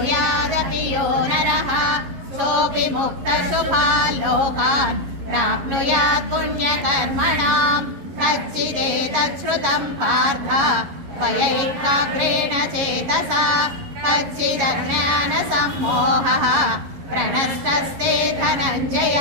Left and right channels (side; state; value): left; late; 11 ms